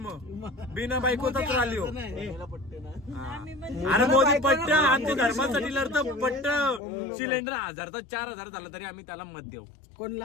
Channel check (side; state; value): right; drops out; at 6.8 s